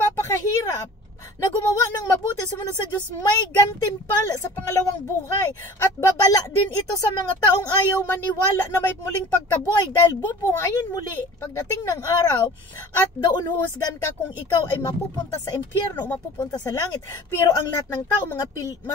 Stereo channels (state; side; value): normal; both; correlation 0.43